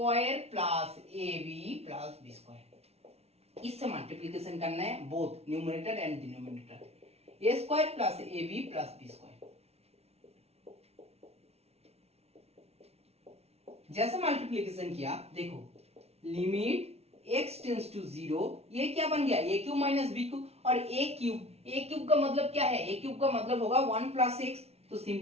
plus a b plus b square, इससे मल्टीप्लीकेशन करना है both numerator and denominator, a square plus a b plus b square. जैसे multiplication किया देखो, limit x tends to 0, ये क्या बन गया, a cube minus b cube, और a क्यूब का मतलब क्या है, a क्यूब का मतलब होगा 1 प्लस एक्स, तो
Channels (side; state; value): left; late; 0.30 ms